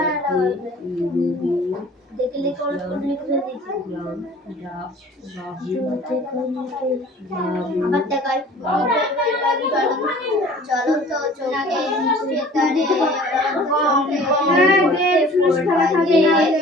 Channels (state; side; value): normal; both; correlation 0.48